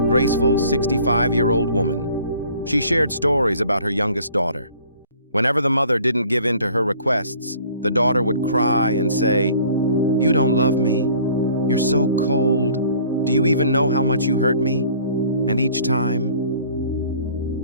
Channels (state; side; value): inverted; both; correlation -0.53